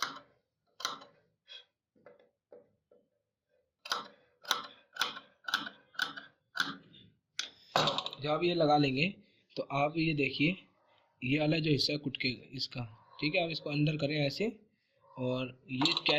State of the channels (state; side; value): identical; both; correlation 1.00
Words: जब आप ये लगा लेंगे तो आप ये देखिए, ये वाला जो हिस्सा है कुटके इसका, ठीक है, आप इसको अंदर करें ऐसे, और ये